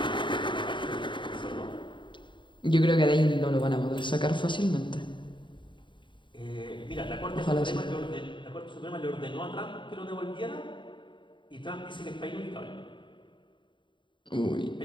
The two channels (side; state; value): right; late; 0.23 ms